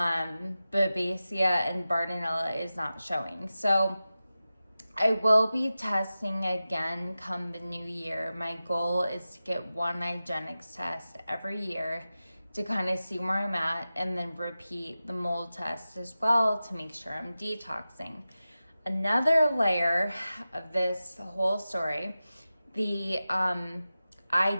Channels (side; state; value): both; inverted; correlation -0.94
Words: and Bartonella is not showing. So I will be testing again come the new year. My goal is to get one Igenex test every year to kind of see where I'm at, and then repeat the mold test as well to make sure I'm detoxing. Another layer of this whole story, I